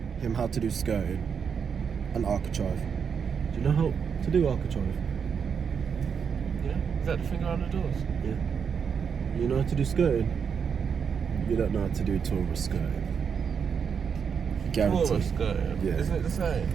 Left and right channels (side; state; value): left; quieter; 6.7 dB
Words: him how to do skirting and architrave. Do you know how to do architrave? Yeah? Is that the thing around the doors? Yeah. You know how to do skirting? You don't know how to do tourist skirting. Guaranteed. Tourist skirting? Yeah. Isn't it the same?